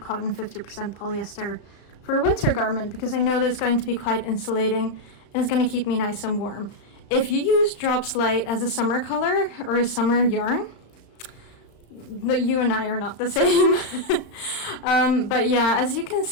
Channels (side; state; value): right; late; 35 ms